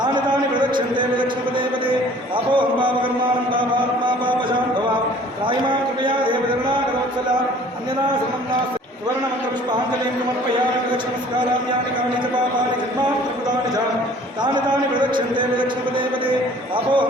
तानि प्रदक्षन्ते विलक्ष्मपदे पदे पापोऽहं पापकर्माणं पापात्मा पापशां भवां त्रायिमां कृपया देवचरणाकरोत्सला अन्यदा समं नास्ति सुवर्णमन्त्रपुष्पाञ्जलिं समर्पयामि लक्ष्मणस्काराम्यानि कानि च पापानि जन्मान्तर्कृतानि च तानि तानि प्रदक्षन्ते विलक्ष्मपदे पदे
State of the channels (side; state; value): both; normal; correlation 0.52